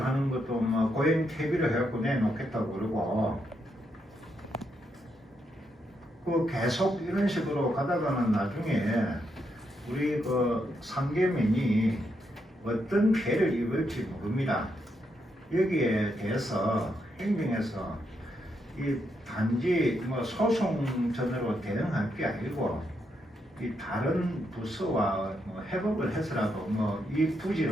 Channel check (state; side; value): normal; both; correlation 0.80